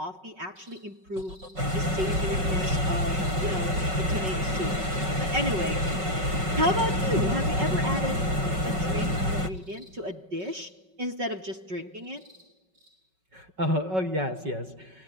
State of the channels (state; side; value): late; left; 5.4 ms